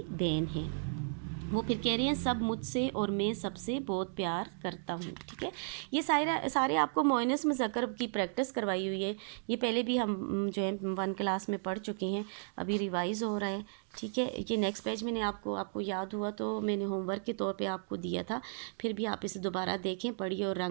बहन है। वो फिर कह रही हैं सब मुझसे और मैं सबसे बहुत प्यार करता हूँ, ठीक है। ये सारे आपको मोइनस मुज़क्कर की प्रैक्टिस करवाई हुई है। ये पहले भी हम जो है 1 क्लास में पढ़ चुके हैं, अभी रिवाइज़ हो रहा है, ठीक है। ये नेक्स्ट पेज मैंने आपको याद हुआ तो मैंने होमवर्क के तौर पे आपको दिया था, फिर भी आप इसे दोबारा देखें, पढ़िए और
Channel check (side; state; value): left; silent; digital silence